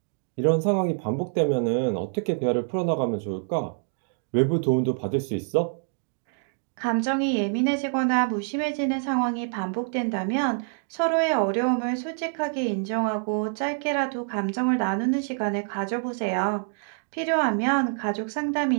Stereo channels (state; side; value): silent; left; 61 dB below the other